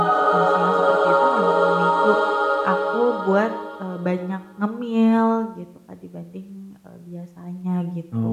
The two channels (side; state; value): both; identical; correlation 1.00